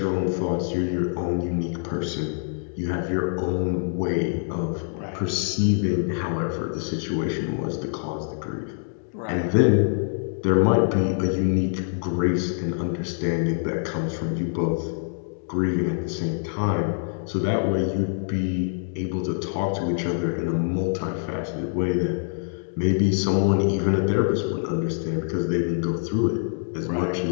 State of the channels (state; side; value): silent; right; digital silence